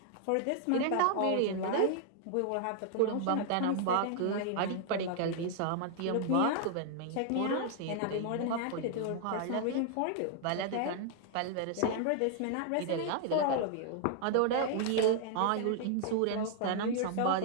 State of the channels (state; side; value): different; both; correlation -0.01